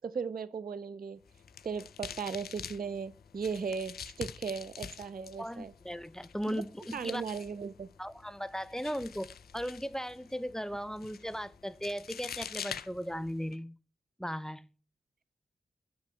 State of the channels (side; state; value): both; normal; correlation 0.78